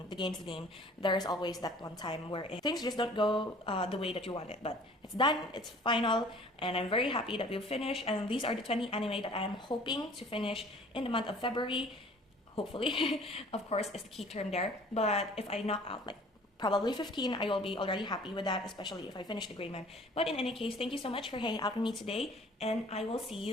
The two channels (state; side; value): normal; both; correlation 0.50